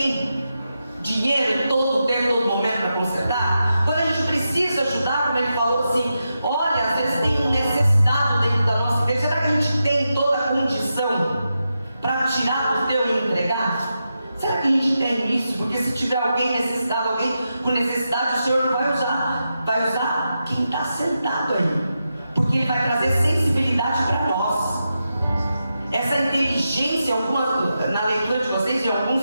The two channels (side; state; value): both; inverted; correlation -0.88